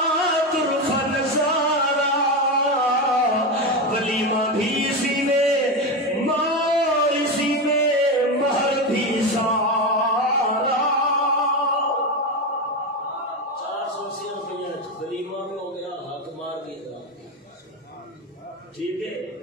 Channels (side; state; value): both; normal; correlation 0.15